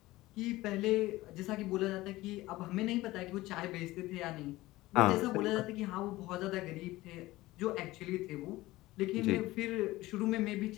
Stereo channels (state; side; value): quieter; right; 18.2 dB